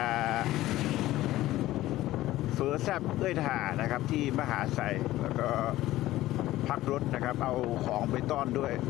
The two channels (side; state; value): right; quieter; 15.7 dB